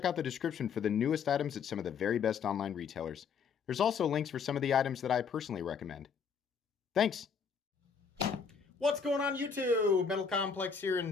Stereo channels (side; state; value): right; quieter; 6.2 dB